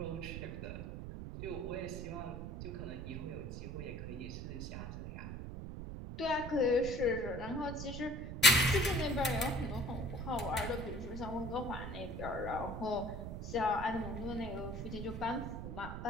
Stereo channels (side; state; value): right; noise; rumble, 7 dB below the sound